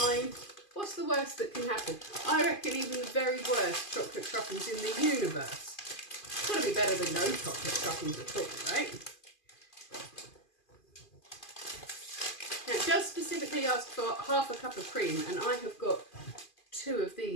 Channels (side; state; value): right; late; 2.5 ms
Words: What's the worst that can happen? I reckon even the very worst chocolate truffles in the universe. It's got to be better than no chocolate truffles at all, right? Now, it does specifically ask for half a cup of cream, and I have got 2 of